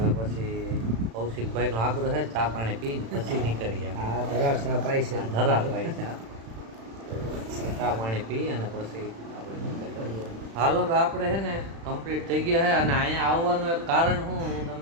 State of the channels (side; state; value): left; late; 36 ms